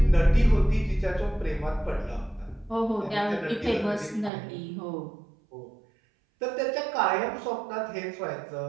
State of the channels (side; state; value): left; drops out; at 4.3 s